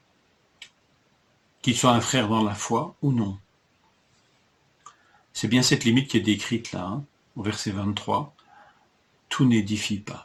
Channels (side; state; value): both; identical; correlation 1.00